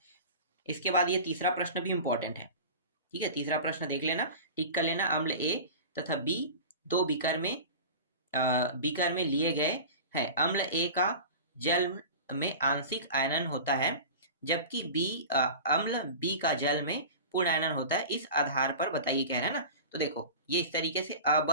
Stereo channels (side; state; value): both; inverted; correlation -0.33